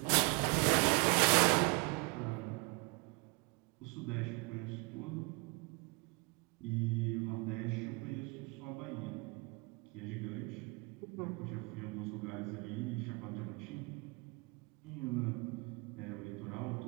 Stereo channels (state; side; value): quieter; left; 29.8 dB